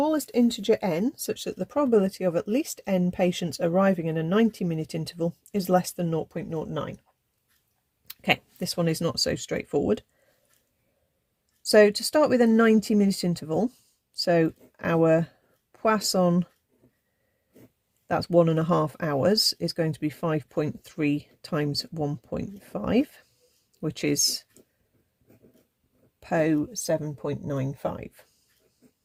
integer n such that the probability of at least n patients arriving in a 90-minute interval is less than 0.09. Okay, this one is not so straightforward. So to start with a 90-minute interval, so our Poisson, that's 1.5 hours, is going to be 5.3 times 1.5, which is Po 7.95.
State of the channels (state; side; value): identical; both; correlation 1.00